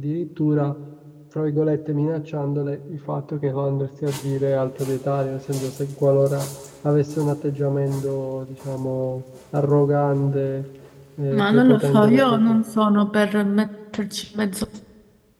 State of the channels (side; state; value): both; identical; correlation 1.00